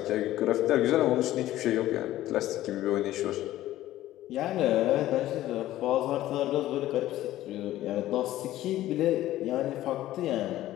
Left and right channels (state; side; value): quieter; right; 14.5 dB